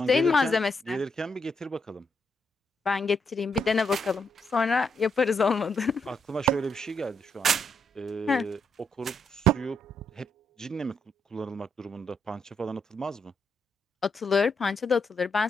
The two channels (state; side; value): normal; both; correlation 0.78